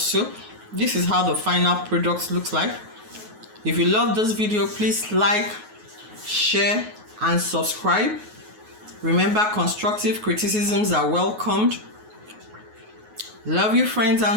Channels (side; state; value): left; late; 9.4 ms